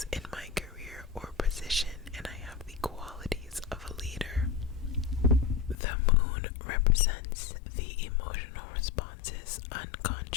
in my career or position, and I have the qualities of a leader. The moon represents the emotional responses,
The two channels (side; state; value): right; drops out; at 5.8 s